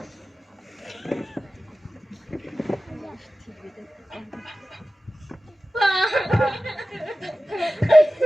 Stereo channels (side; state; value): both; normal; correlation 0.95